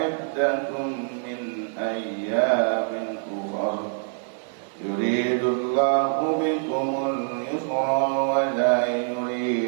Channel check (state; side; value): silent; left; digital silence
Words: من أيام أخر يريد الله بكم اليسر ولا